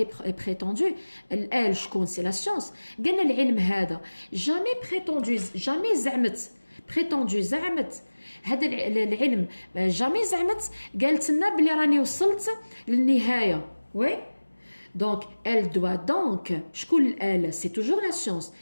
prétendu elle شكون سي لا سيونس قالنا العلم هذا jamais prétendu jamais زعمت prétendu زعمت هذا العلم جامي زعمت قالت لنا بلي راني وصلت للنهايه. وي دونك elle doit donc شكون elle c'est toujours la science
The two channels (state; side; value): inverted; both; correlation -1.00